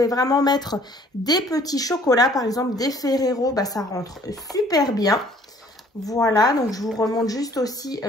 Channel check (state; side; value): normal; both; correlation 0.57